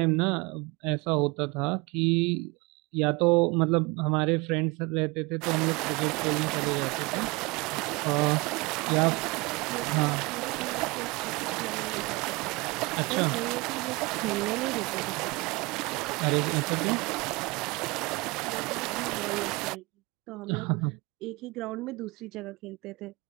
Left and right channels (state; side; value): quieter; left; 25.5 dB